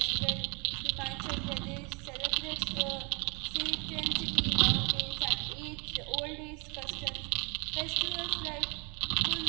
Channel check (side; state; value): left; quieter; 32.9 dB